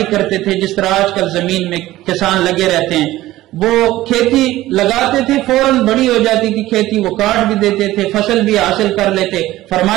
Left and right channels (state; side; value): quieter; left; 16.1 dB